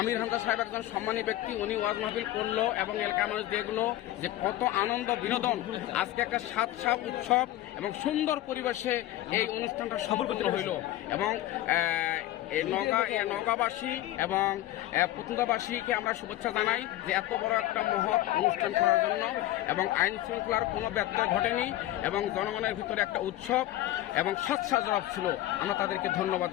হামজা সাহেব একজন সম্মানী ব্যক্তি, উনি ওয়াজ মাহফিল করলো এবং এলাকার মানুষ দেখলো যে কত আনন্দ বিনোদন। আজকে একটা সাত উৎসব এবং সুন্দর পরিবেশে এই অনুষ্ঠানটা সফল হইল। এবং নওগাঁবাসী এবং পতুঙ্গাবাসীকে আমরা শুভেচ্ছা জানাই যে এত বড় একটা মহৎ অনুষ্ঠান করার জন্য, এবং আইন শৃঙ্খলার কোনো ব্যত্যয় ঘটেনি এবং জনগণের ভিতরে একটা উৎসব এবং স্বাচ্ছাজরব ছিল। আমরা তাদেরকে ধন্যবাদ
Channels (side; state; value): right; quieter; 14.9 dB